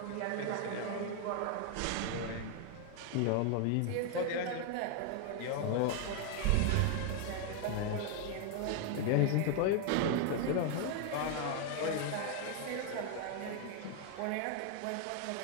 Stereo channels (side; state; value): both; different; correlation 0.00